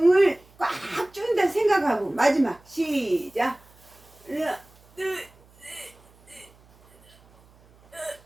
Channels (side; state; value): right; noise; hum, 29 dB below the sound